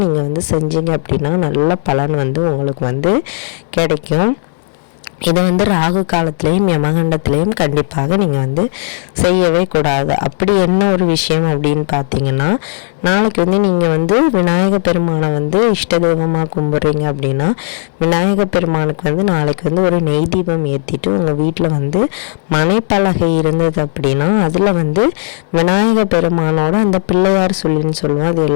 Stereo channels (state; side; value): silent; right; 63 dB below the other